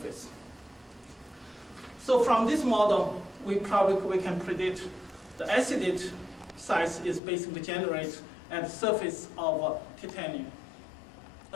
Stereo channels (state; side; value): drops out; right; at 7.2 s